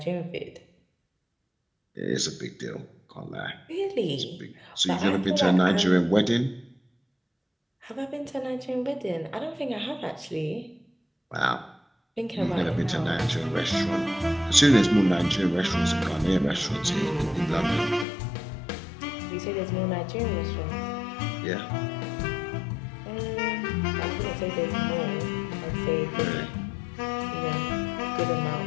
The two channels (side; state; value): right; drops out; at 18.1 s